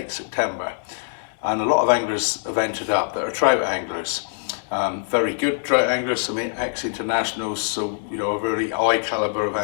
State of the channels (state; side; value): silent; right; digital silence